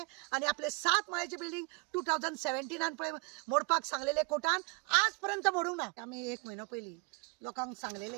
आणि आपले 7 माळ्याची बिल्डिंग 2017 पळय मोडपाक सांगलेले कोर्टान आजपर्यंत मोडूंक ना। आम्ही 1 महिनो पयलीं लोकांक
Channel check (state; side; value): quieter; left; 31.3 dB